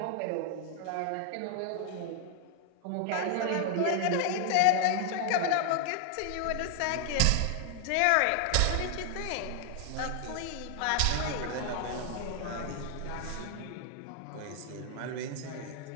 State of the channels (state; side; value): different; both; correlation 0.00